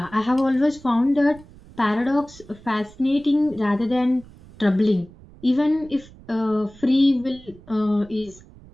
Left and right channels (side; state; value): right; noise; rumble, 22 dB below the sound